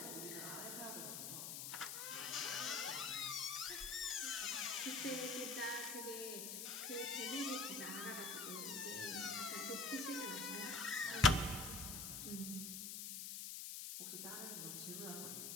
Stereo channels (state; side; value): noise; left; hiss, 4 dB below the sound